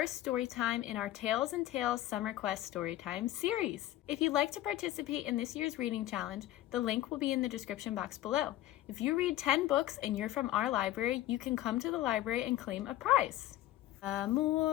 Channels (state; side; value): quieter; right; 14.6 dB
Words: Storytime in our Tales and Tales Summer Quest Storytime series. If you'd like to participate in this year's reading challenge, the link will be in the description box below. If you read 10 books and you're from our library, you can come to the library and claim a prize. The